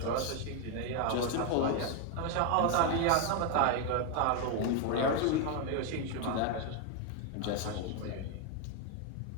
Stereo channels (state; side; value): different; both; correlation 0.01